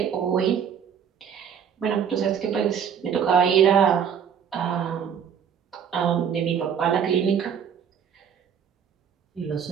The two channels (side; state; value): left; quieter; 7.9 dB